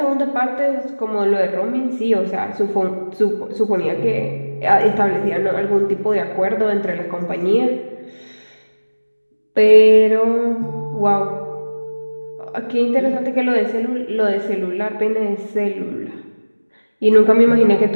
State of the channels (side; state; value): both; inverted; correlation -1.00